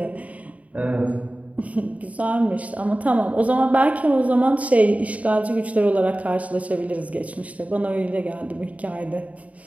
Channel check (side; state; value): left; late; 0.069 ms